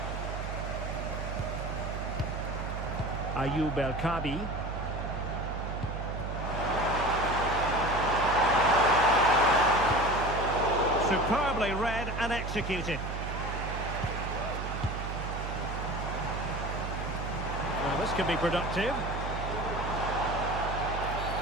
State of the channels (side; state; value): right; noise; hum, 5 dB below the sound